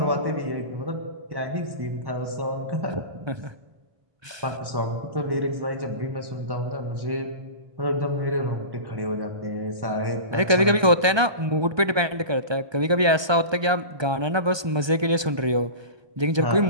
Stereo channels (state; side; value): late; left; 1.2 ms